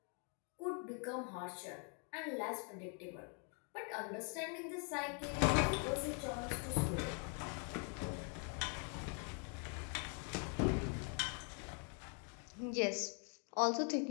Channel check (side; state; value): right; quieter; 39.8 dB